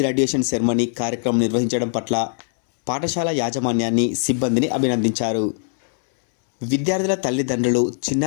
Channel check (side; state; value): right; silent; 65 dB below the other